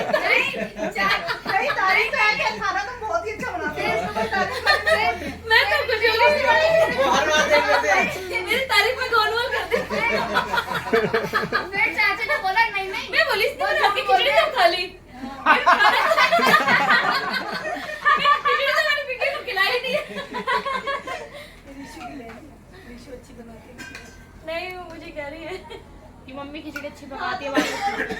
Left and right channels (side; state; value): both; identical; correlation 1.00